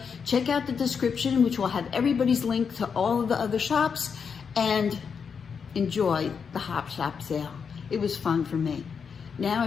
Check out the description, which will have everybody's link to all of the other shops, and enjoy the Hop Shop sale. It was fun for me. Now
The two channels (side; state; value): right; quieter; 6.3 dB